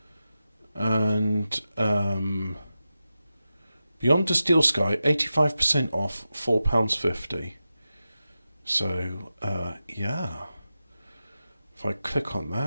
and Beyond the Steel Sky 85% off, £4.50. So yeah, if I click on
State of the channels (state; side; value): inverted; both; correlation -0.92